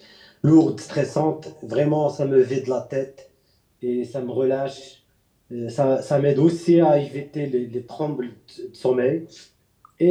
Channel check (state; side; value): identical; both; correlation 1.00